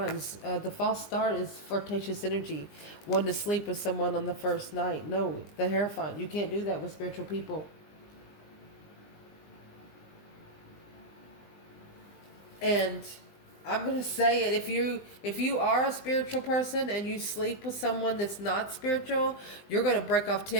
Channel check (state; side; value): late; right; 20 ms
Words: The false start is flirtatious energy. Wanting to sleep with someone on the first night. No, the Hierophant. You can't do that with spiritual people. And I'm going to say it. If you are a spiritual person and you sleep with someone that's not spiritual, you're going to break off